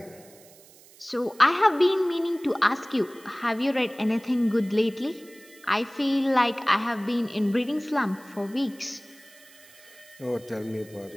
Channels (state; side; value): noise; right; hiss, 24 dB below the sound